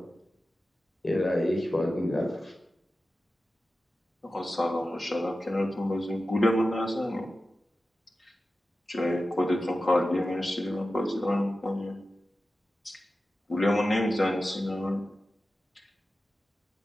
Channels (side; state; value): both; normal; correlation 0.94